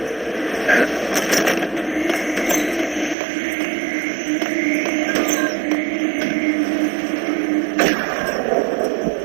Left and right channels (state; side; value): drops out; left; at 3.2 s